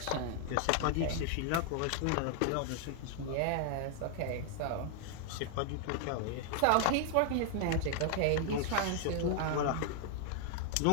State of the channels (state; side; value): different; both; correlation 0.00